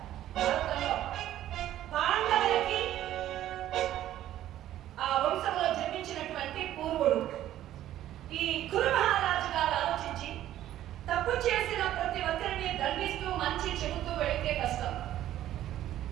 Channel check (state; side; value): quieter; left; 12.8 dB